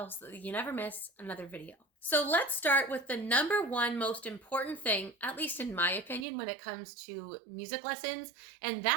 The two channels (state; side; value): drops out; left; at 6.2 s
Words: so that you never miss another video. So let's start with the number one most important thing, at least in my opinion, when it comes to music lessons, and